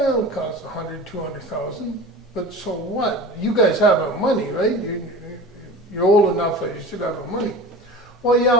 it'll cost 100, 200,000. But so what? You guys have the money, right? You're old enough that you should have the money. Well,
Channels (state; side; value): normal; both; correlation 0.35